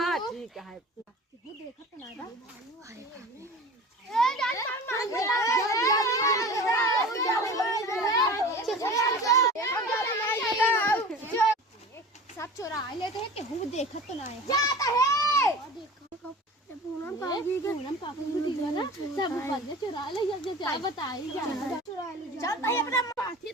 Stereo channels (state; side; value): normal; both; correlation 0.38